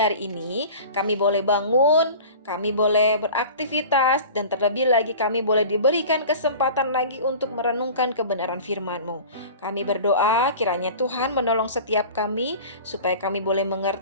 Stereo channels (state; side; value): inverted; both; correlation -0.39